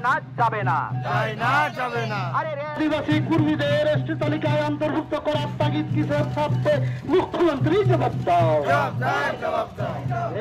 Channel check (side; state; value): both; identical; correlation 1.00